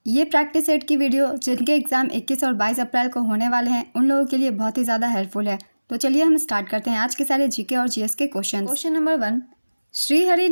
ये प्रैक्टिस सेट की वीडियो जिनके एग्जाम 21 और 22 अप्रैल को होने वाले हैं उन लोगों के लिए बहुत ही ज़्यादा हेल्पफुल है। तो चलिए हम स्टार्ट करते हैं आज के सारे जीके और जीएस के question. Question number 1, Srihari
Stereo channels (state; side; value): inverted; both; correlation -1.00